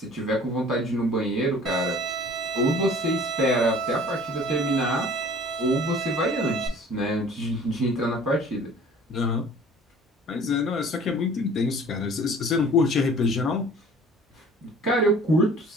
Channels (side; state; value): both; normal; correlation 0.48